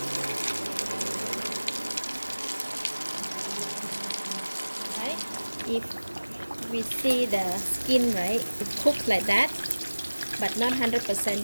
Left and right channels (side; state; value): both; inverted; correlation -1.00